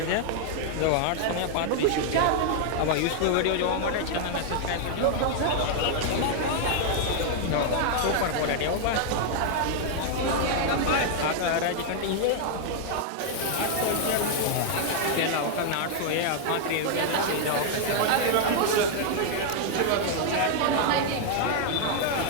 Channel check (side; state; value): both; different; correlation 0.00